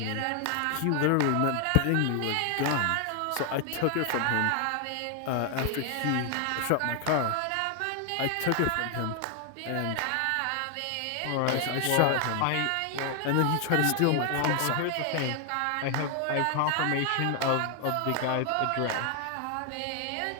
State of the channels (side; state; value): both; different; correlation 0.00